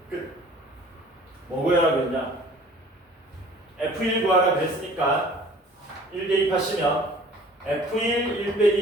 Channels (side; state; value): both; normal; correlation 0.50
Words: 끝. 뭐 구하라 그랬냐? f1 구하라 그랬으니까 1 대입하시면 f1 1